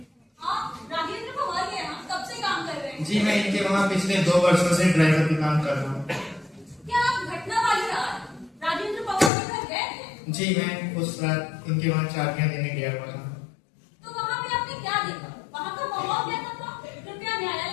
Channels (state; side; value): drops out; right; at 9.3 s